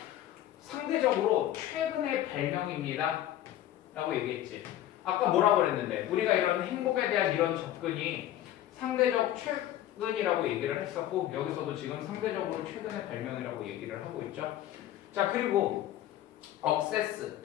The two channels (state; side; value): quieter; right; 12.7 dB